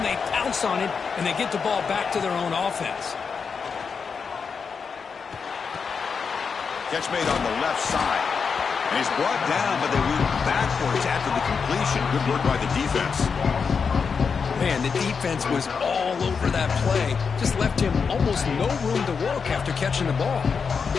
they pounce on it, and they get the ball back to their own offense. Catch made on the left side. And he's brought down, but they went backwards after the completion. Good work by the defense. Man, the defense was all over that play. Just left him almost no room to work after catching the ball.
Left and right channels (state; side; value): quieter; right; 5.7 dB